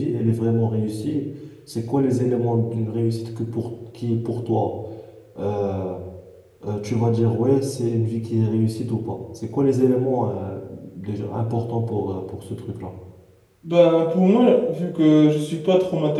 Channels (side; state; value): both; identical; correlation 1.00